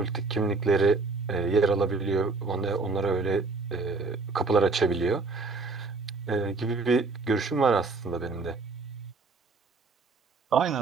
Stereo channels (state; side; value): quieter; left; 4.0 dB